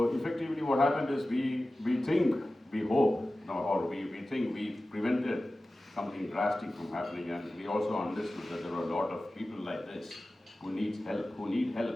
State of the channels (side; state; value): both; normal; correlation 0.95